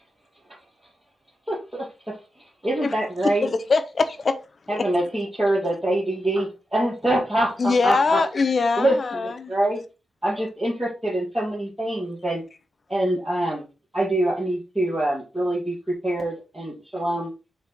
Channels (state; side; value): normal; both; correlation 0.88